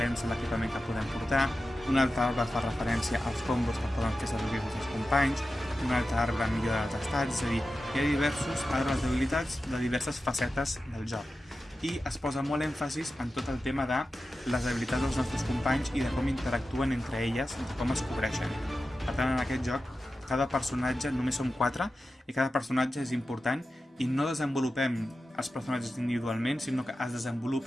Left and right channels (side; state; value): both; normal; correlation 0.93